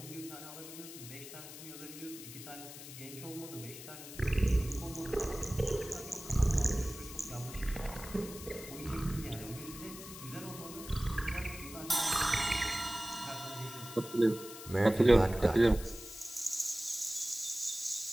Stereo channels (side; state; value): left; noise; hiss, 13 dB below the sound